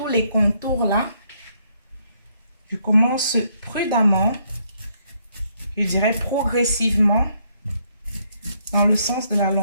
les contours là. Je commence prudemment, je dirais progressivement, dans le sens de la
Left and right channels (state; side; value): inverted; both; correlation -0.72